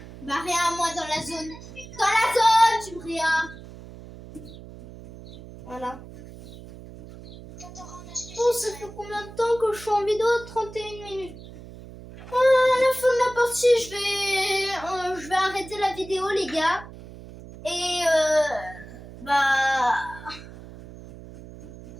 Barré à moi dans la zone. Dans la zone, tu me rien. Voilà. Oh, ça fait combien de temps que je suis en vidéo? 31 minutes. À la fin de la partie, je vais arrêter la vidéo, les gars. Et bah,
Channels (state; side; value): noise; right; hum, 16 dB below the sound